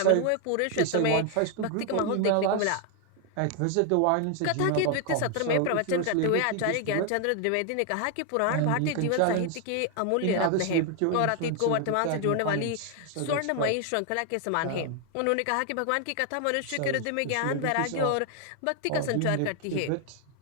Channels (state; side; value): different; both; correlation 0.00